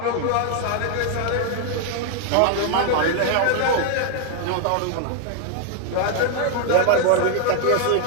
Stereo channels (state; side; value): different; both; correlation 0.00